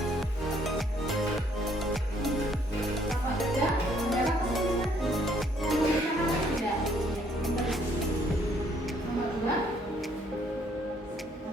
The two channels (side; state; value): both; normal; correlation 0.66